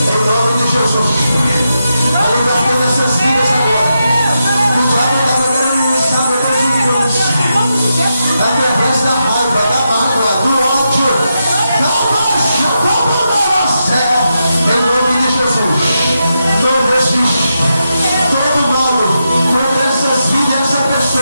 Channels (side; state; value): both; inverted; correlation -0.86